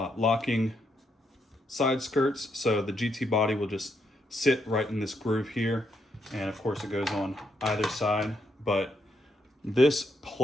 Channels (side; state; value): both; normal; correlation 0.78